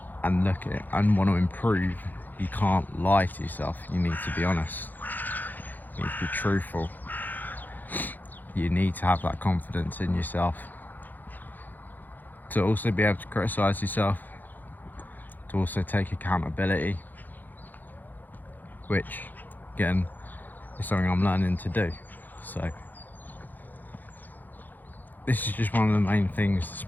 and look at it and want to improve, you can't lie to yourself. You need to be honest. You need to be truthful. You need to have that confidence in yourself to also be able to criticize yourself, to also take accountability, which again is something I'm learning to do. So this is just one of the main things the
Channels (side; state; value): right; late; 0.085 ms